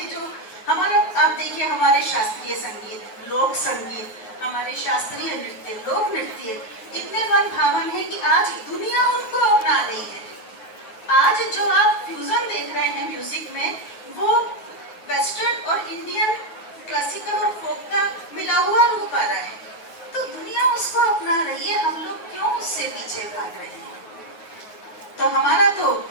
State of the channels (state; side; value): late; right; 9.2 ms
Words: जो हमारा, आप देखिए हमारे शास्त्रीय संगीत, लोक संगीत, हमारे शास्त्रीय नृत्य, लोक नृत्य इतने मन भावन है कि आज दुनिया उनको अपना रही है। आज जो आप फ्यूजन देख रहे हैं म्यूजिक में, वो वेस्टर्न और इंडियन क्लासिकल और फोक का मिला हुआ रूप आ रहा है। तो दुनिया उसको अपना रही है, हम लोग क्यों उससे पीछे भाग रहे हैं। तो हमारा तो